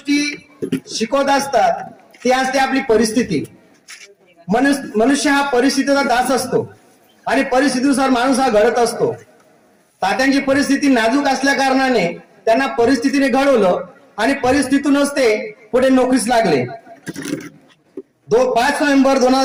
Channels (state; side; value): identical; both; correlation 1.00